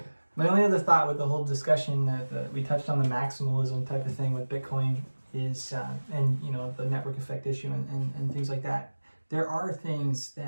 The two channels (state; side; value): inverted; both; correlation -1.00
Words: My only other thought with the whole discussion that we touched on the maximalism type of thing with Bitcoin is, and the network effect issue and things like that. There are things